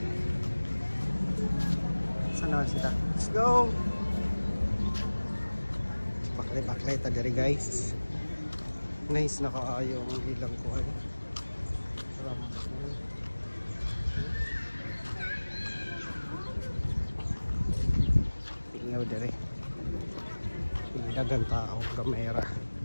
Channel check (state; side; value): inverted; both; correlation -1.00